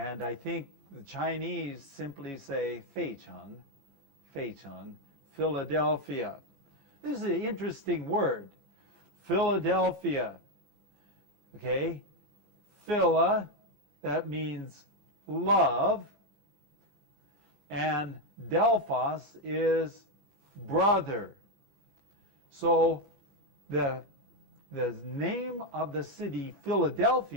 I think the Chinese simply say 费城, Philadelphia. This is an interesting word. Philadelphia. Okay? Phila, that means love. And Delphos is brother. So the name of the city,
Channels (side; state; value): left; late; 20 ms